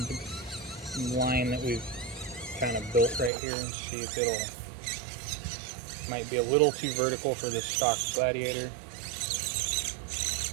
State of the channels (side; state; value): left; drops out; at 3.3 s